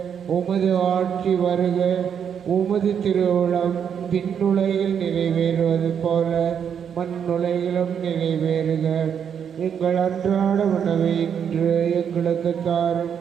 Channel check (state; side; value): quieter; left; 7.9 dB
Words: உமது ஆட்சி வருக. உமது திருவுளம் விண்ணுலகில் நிறைவேறுவது போல மண்ணுலகிலும் நிறைவேறுக. எங்கள் அன்றாட உணவை இன்று எங்களுக்கு தாரும்.